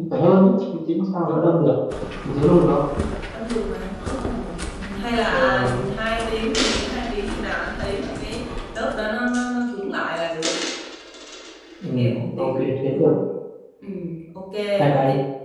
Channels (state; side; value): identical; both; correlation 1.00